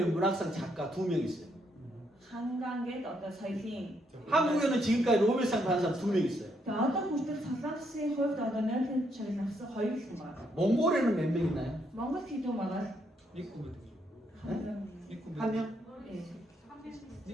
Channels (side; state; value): both; normal; correlation 0.75